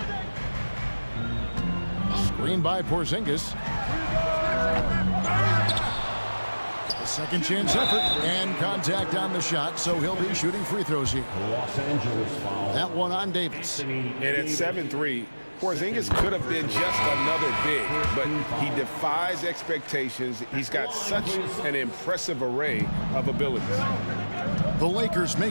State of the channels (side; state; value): both; inverted; correlation -1.00